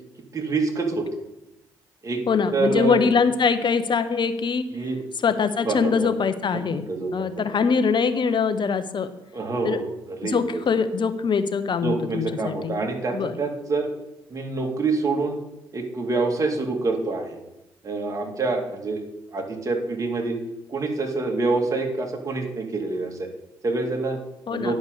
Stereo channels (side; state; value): both; normal; correlation 0.63